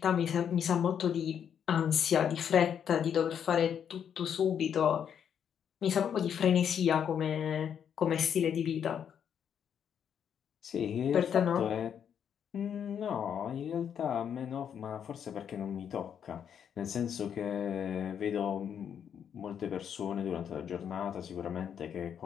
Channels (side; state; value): right; quieter; 8.3 dB